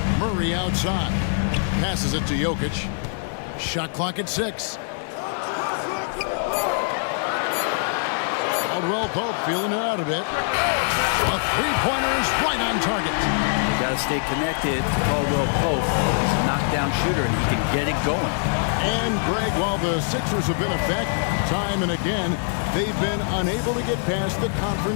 Murray outside. Passes it to Jokic. Shot clock at 6. Caldwell Pope feeling it out a bit. A three-pointer is right on target. You got to stay connected to Caldwell Pope. He's a knockdown shooter, and he can get it going. And, Greg, while the Sixers have been effective time and again, they've been unable to get past the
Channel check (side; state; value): right; silent; digital silence